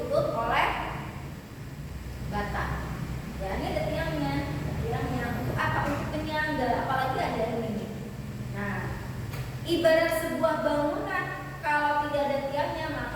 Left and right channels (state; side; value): identical; both; correlation 1.00